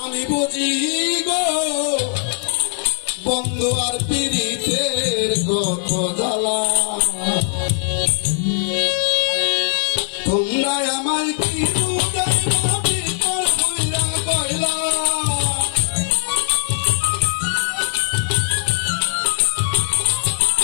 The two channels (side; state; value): right; silent; digital silence